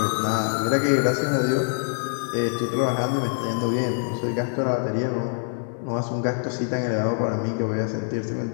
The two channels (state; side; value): silent; right; 62 dB below the other